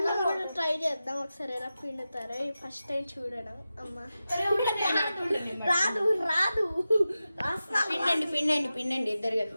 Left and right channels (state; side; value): inverted; both; correlation -0.93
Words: ట్రై చేద్దాం ఒకసారి, ఎలా పిండుతారో. ఫస్ట్ టైం చూడడం. అమ్మ రాదు రాదు. పిండండి పిండండి పిండండి, ఇద్దరు కదా.